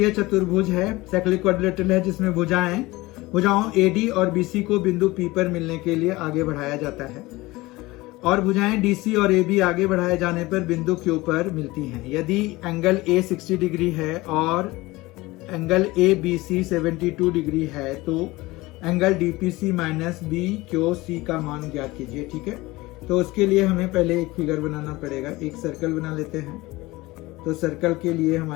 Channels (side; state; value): right; quieter; 20.5 dB